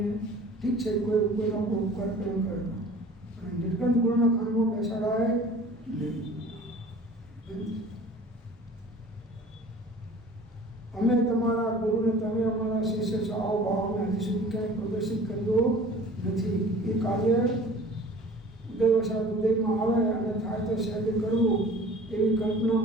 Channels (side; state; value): both; normal; correlation 0.45